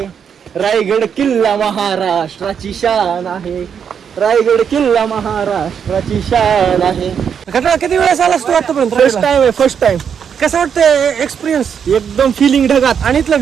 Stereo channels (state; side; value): quieter; left; 7.5 dB